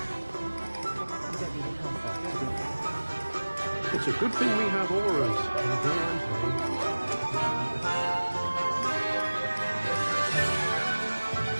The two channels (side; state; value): both; inverted; correlation -1.00